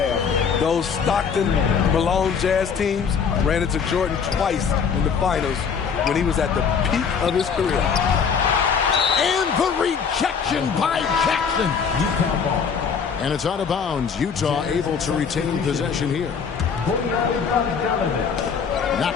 Those Stockton, Malone Jazz teams ran into Jordan twice in the finals when he was at the peak of his career. And the rejection by Jackson. And it's out of bounds. Utah able to retain possession here.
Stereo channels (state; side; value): quieter; right; 6.4 dB